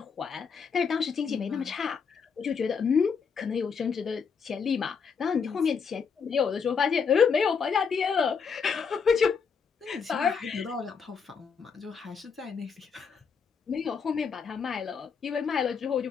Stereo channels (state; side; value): quieter; right; 6.0 dB